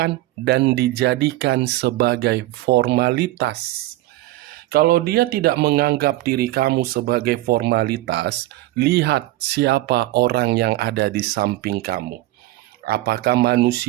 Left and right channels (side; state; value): left; quieter; 17.1 dB